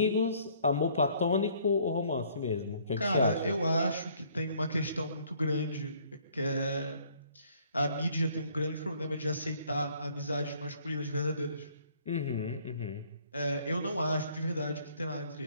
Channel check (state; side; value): inverted; both; correlation -0.61